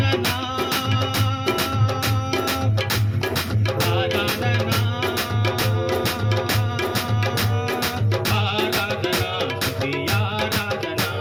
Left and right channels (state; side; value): identical; both; correlation 1.00